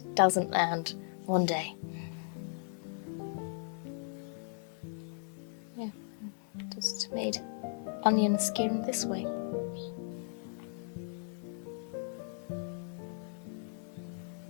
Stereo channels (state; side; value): silent; right; 53 dB below the other